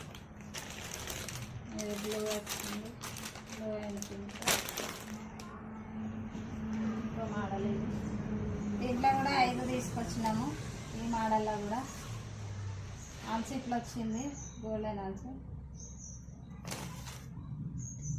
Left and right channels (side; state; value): both; identical; correlation 1.00